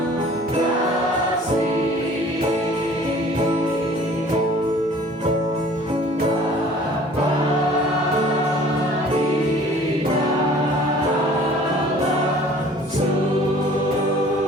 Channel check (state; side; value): normal; both; correlation 0.50